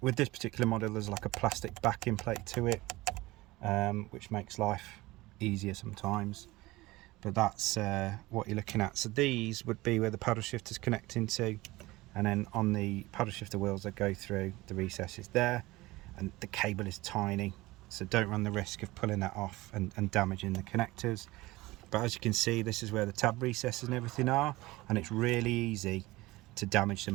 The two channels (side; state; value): left; quieter; 19.8 dB